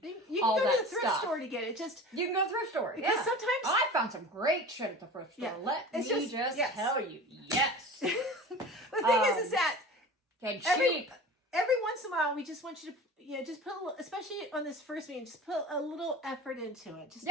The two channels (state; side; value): normal; both; correlation 0.36